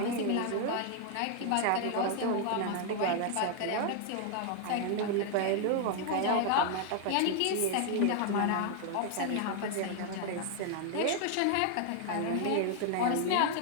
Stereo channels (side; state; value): both; different; correlation 0.00